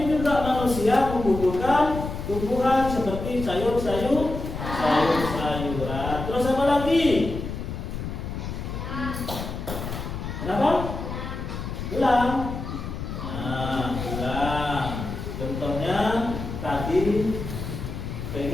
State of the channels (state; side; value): noise; left; rumble, 6 dB below the sound